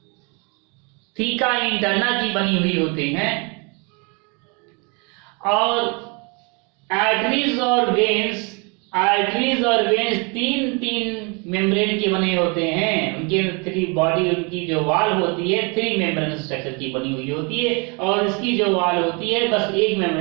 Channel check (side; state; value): left; quieter; 31.7 dB